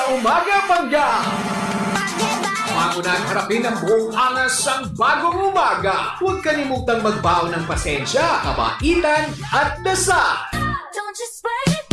umaga, Pangga! Bago na harapin ang buong angas ng bagong umaga, huwag kalimutang magbaon ng pasensya, kabaitan at dasal. Don't you sweat it,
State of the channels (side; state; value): both; identical; correlation 1.00